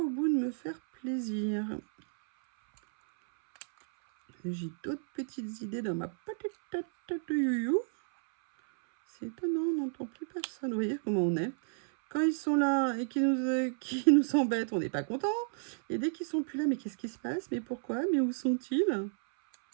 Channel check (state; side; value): silent; left; 57 dB below the other